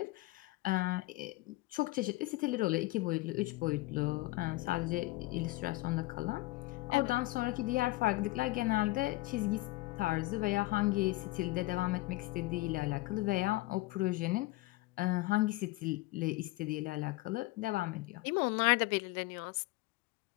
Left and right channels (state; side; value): quieter; right; 20.4 dB